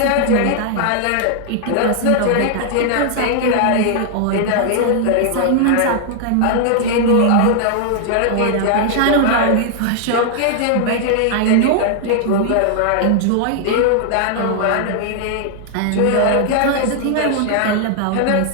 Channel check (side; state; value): both; different; correlation -0.01